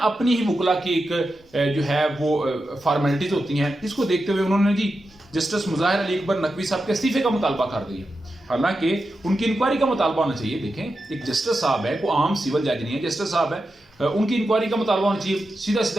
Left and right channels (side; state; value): both; normal; correlation 0.89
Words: अपनी ही वकला की एक जो है वो फॉर्मेलिटीज होती हैं। इसको देखते हुए उन्होंने जी जस्टिस मुजाहिर अली अकबर नकवी साहब के इस्तीफे का मुतालबा कर दिया। हालांकि उनकी इंक्वायरी का मुतालबा होना चाहिए। देखें, एक जस्टिस साहब है, कोई आम सिविल जज नहीं है, जस्टिस साहब है, उनकी इंक्वायरी का मुतालबा होना चाहिए। सीधा